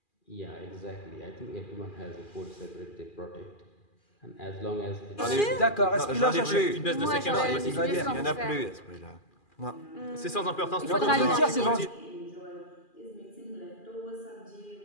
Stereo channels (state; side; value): late; right; 2.4 ms